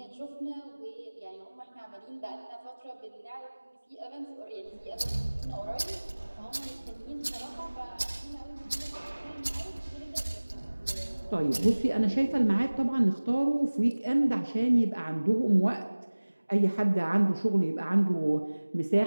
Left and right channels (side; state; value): both; inverted; correlation -1.00